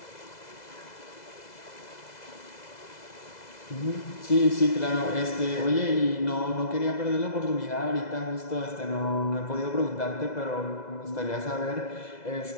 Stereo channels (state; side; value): late; right; 2.0 ms